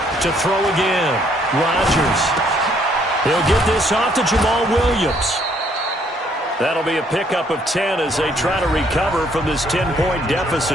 To throw again, Rodgers. He'll get this off to Jamal Williams. That'll be a pickup of 10 as they try to recover from this 10-point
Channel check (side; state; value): both; normal; correlation 0.67